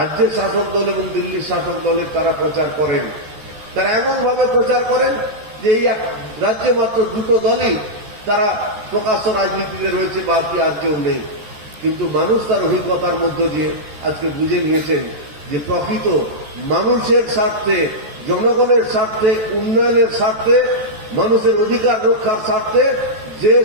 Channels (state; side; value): late; left; 14 ms